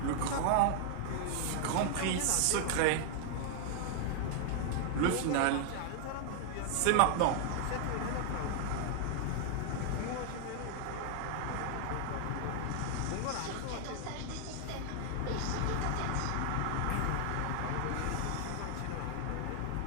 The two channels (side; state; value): both; different; correlation 0.00